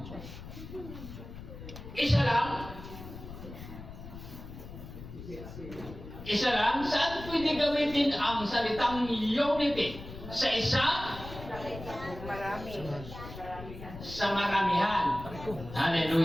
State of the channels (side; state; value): left; noise; rumble, 12 dB below the sound